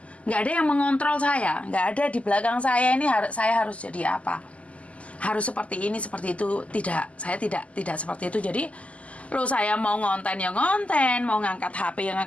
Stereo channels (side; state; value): right; late; 0.065 ms